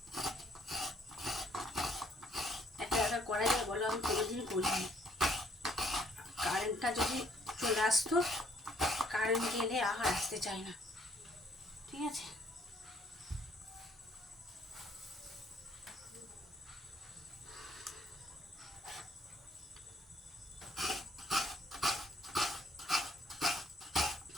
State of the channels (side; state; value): both; normal; correlation 0.64